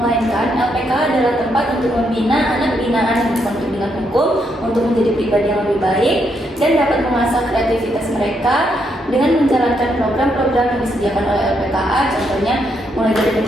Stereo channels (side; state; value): both; normal; correlation 0.77